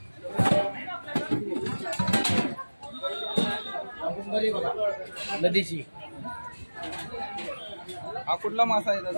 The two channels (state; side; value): inverted; both; correlation -1.00